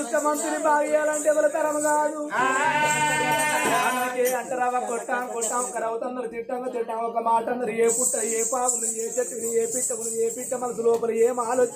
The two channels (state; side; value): identical; both; correlation 1.00